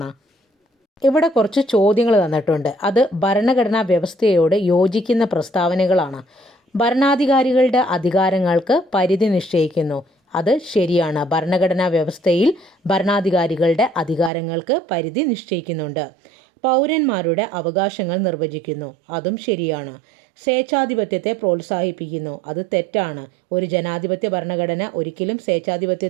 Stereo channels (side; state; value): left; drops out; at 14.3 s